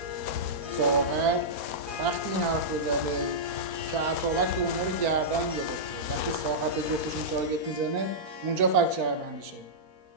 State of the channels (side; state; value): left; late; 4.4 ms